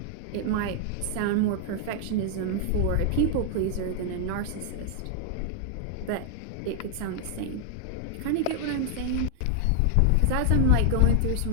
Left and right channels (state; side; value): different; both; correlation 0.00